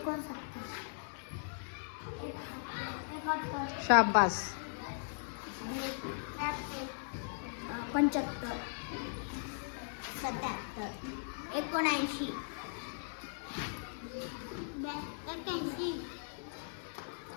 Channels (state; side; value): silent; right; digital silence